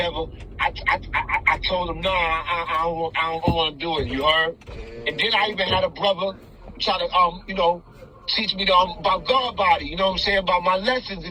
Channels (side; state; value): both; identical; correlation 1.00